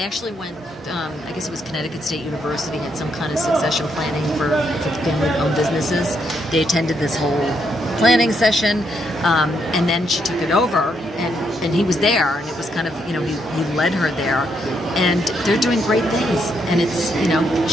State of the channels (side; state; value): both; normal; correlation 0.76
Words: actually went, I guess it was Connecticut State University, had some kind of succession planning for family-owned businesses. They attended this whole planning session, and then she took it over, and he was there, and it was kind of, he led her there, and they're doing great things, and it's,